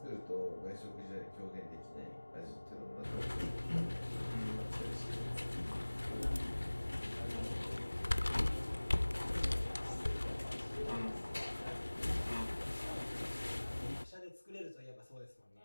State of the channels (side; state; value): both; inverted; correlation -1.00